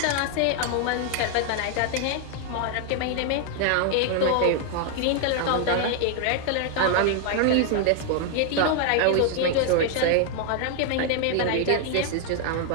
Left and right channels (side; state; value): both; different; correlation 0.00